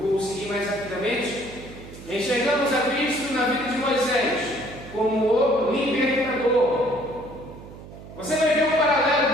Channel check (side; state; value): right; noise; hum, 16 dB below the sound